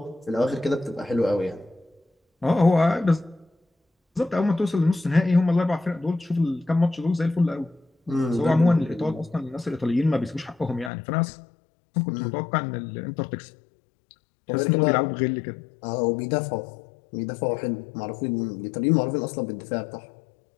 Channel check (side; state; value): right; drops out; at 10.9 s